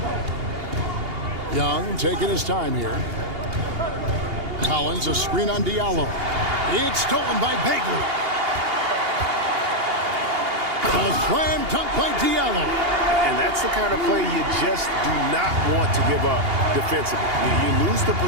Young taking his time here. Collins, a screen on Diallo. It's stolen by Bagley. A slam dunk by Diallo. And that's the kind of play you just do not want to give up defensively. You lose the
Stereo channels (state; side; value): late; left; 2.8 ms